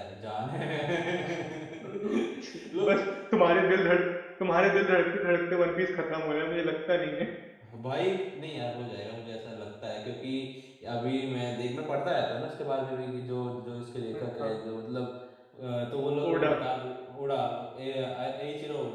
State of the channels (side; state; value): both; identical; correlation 1.00